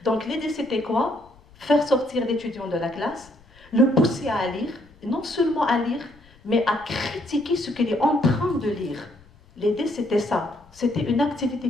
Donc l'idée, c'était quoi? Faire sortir l'étudiant de la classe, le pousser à lire, non seulement à lire, mais à critiquer ce qu'il est en train de lire. L'idée, c'était ça. C'était une activité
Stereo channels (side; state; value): left; noise; rumble, 27 dB below the sound